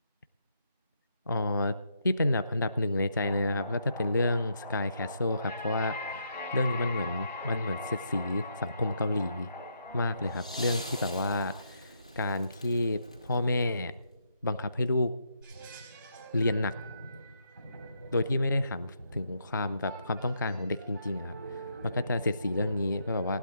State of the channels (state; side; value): inverted; both; correlation -0.77